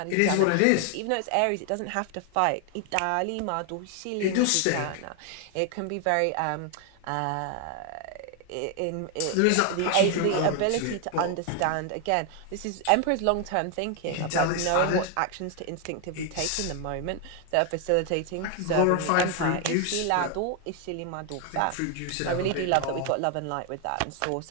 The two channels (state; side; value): different; both; correlation 0.00